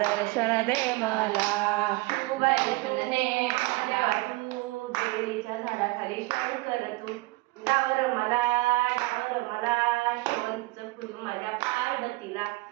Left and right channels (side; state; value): left; quieter; 23.5 dB